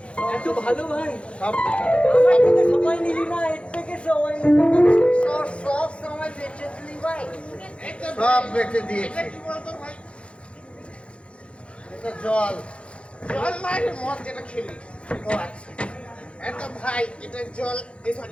এত ভালো ভাই। সব আমার থেকে সময় নিলি না, এর থেকে সময় নিলি না। সব সময় বেঁচে দিলি ভাই। সব বেঁচে দিয়েছি। এটা জল। জল মানে মদ যেটা খেলি। ও আচ্ছা, এটা ভাই, এটা জল,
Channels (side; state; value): right; late; 0.059 ms